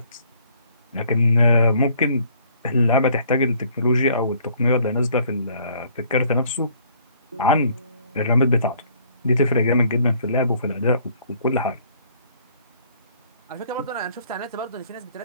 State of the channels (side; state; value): both; inverted; correlation -0.60